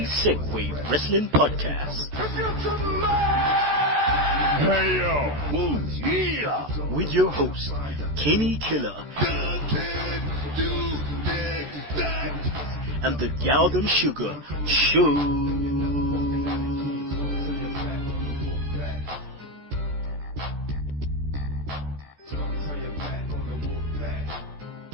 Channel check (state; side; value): late; left; 14 ms